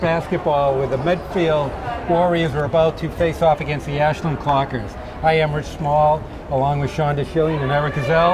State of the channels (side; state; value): both; identical; correlation 1.00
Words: where the Medfield Warriors are about to face off against the Ashland Clockers. I am Rich Small, along with Shonda Schilling and Eric